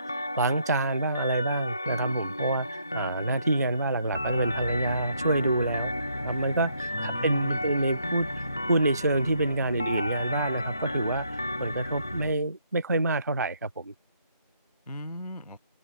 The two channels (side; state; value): both; inverted; correlation -0.71